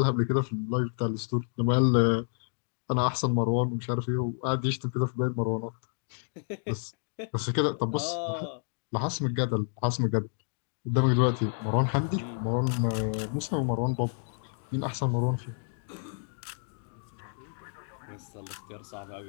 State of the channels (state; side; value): silent; right; digital silence